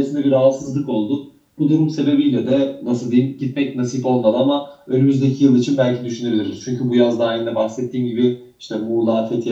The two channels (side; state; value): both; identical; correlation 1.00